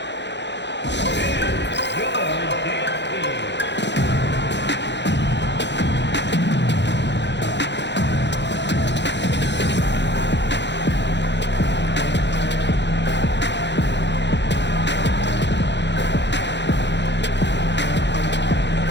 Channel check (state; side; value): late; right; 0.51 ms